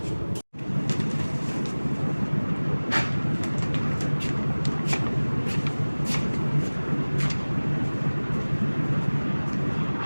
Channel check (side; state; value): both; inverted; correlation -1.00